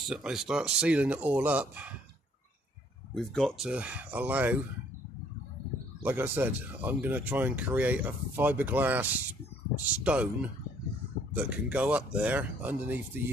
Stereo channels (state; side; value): normal; both; correlation 0.62